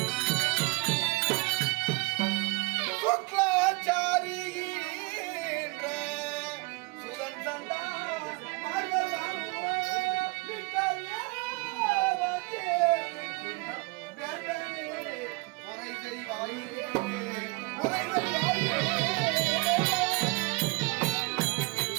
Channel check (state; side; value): quieter; left; 26.3 dB